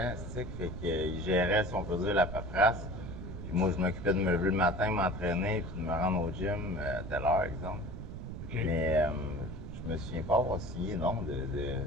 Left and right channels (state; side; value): noise; right; rumble, 8 dB below the sound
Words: stick, fait qu'il gérait, si on peut dire, la paperasse. Puis moi, je m'occupais de me lever le matin, m'entraîner, puis de me rendre au gym à telle heure, exemple. OK. Mais je me souviens pas avoir signé, non,